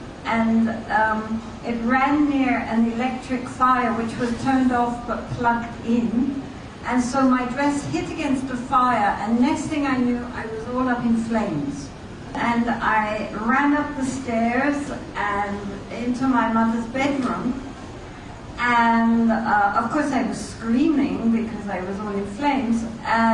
and it ran near an electric fire which was turned off but plugged in. And so my dress hit against the fire, and next thing I knew, I was all up in flames. And I ran up the stairs and into my mother's bedroom. And of course I was screaming because I was all in flames.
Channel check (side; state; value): both; identical; correlation 1.00